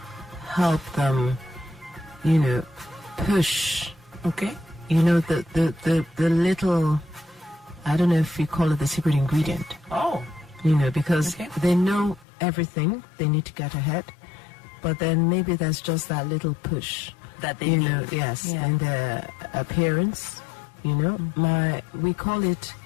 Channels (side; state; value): right; drops out; at 12.2 s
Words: help them, you know, push. Okay. You know, the little, I don't know if you call it the secret ingredient. Oh. You know, because they know everything, they need to get ahead, but then maybe there's just that little push that they need. Know, yes, and their appearance, you know, we call it